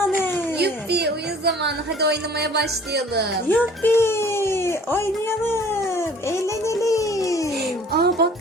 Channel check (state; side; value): normal; both; correlation 0.51